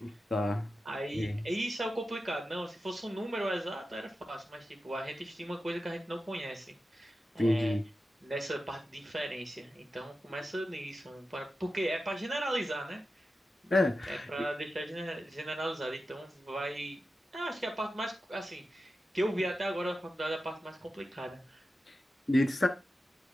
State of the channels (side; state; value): both; normal; correlation 0.92